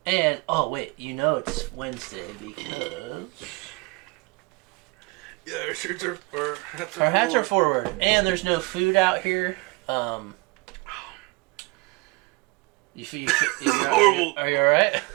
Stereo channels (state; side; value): quieter; left; 26.0 dB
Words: And, oh wait, you know it's Wednesday because... Yeah, our shirts are... Our hats are forward. And there's no food out here. Horrible. Are you alright? I